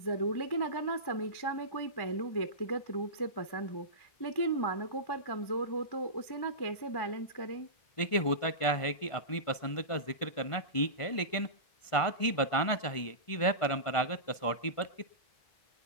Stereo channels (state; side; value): late; right; 1.5 ms